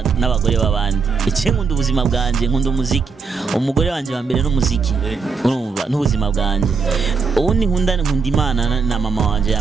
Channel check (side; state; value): left; quieter; 5.1 dB